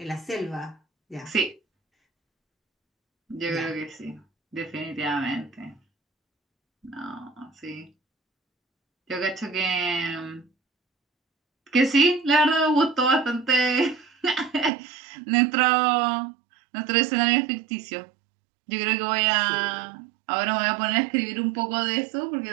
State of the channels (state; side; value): drops out; left; at 14.7 s